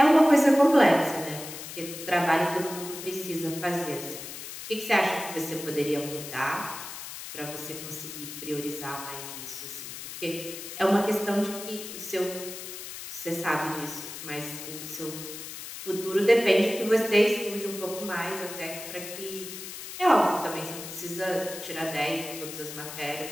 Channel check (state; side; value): noise; left; hiss, 10 dB below the sound